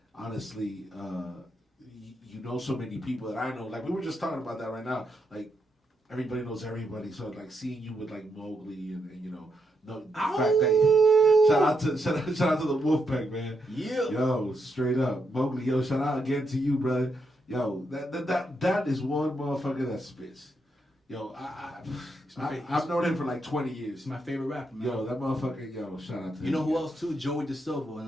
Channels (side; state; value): both; normal; correlation 0.80